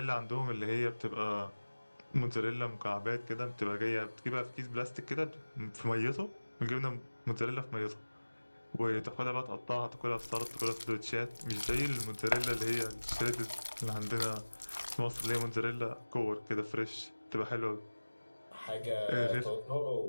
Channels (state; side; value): inverted; both; correlation -1.00